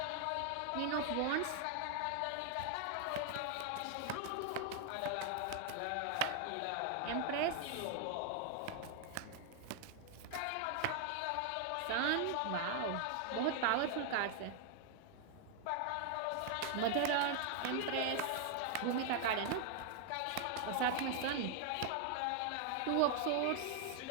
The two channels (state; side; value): different; both; correlation 0.00